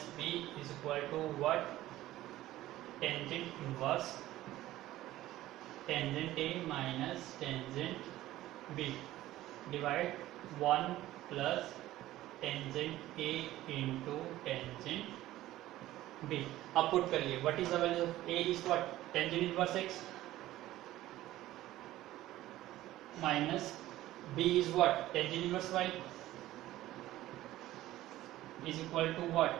b is equal to what tangent inverse tangent a minus tangent b divide 1 plus tangent a into tangent b। अब पुट करिए what is the value of a is what tangent inverse x minus b is what tangent inverse y is equal to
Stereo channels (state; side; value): quieter; left; 15.3 dB